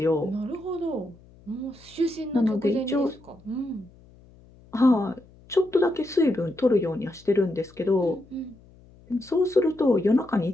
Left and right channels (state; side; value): noise; left; hum, 25 dB below the sound